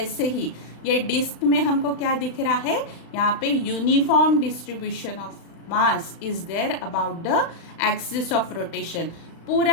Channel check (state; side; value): late; right; 35 ms